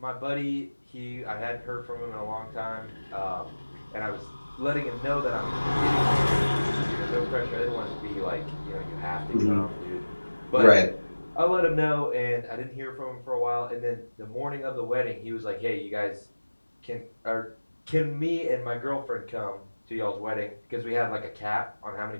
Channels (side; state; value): both; inverted; correlation -1.00